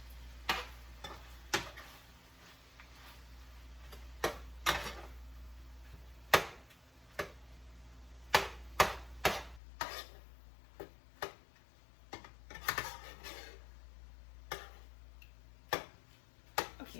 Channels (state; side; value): drops out; right; at 9.6 s